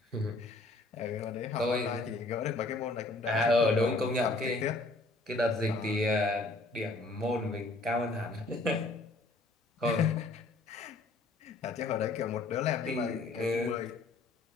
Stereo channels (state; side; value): quieter; right; 3.1 dB